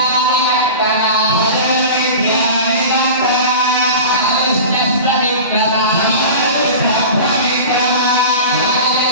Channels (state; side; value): inverted; both; correlation -0.34